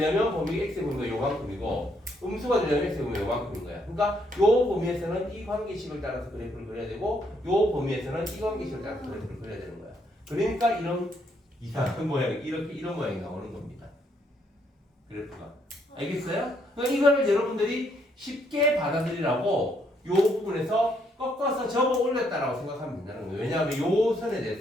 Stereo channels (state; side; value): normal; both; correlation 0.72